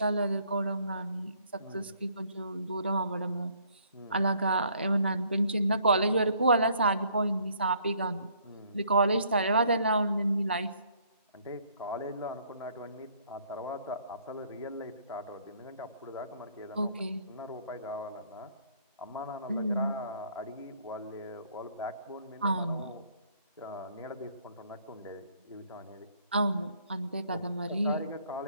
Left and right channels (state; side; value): inverted; both; correlation -0.63